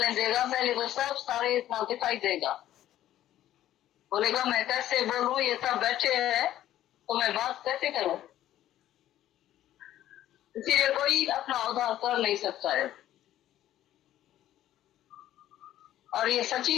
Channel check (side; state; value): right; quieter; 12.8 dB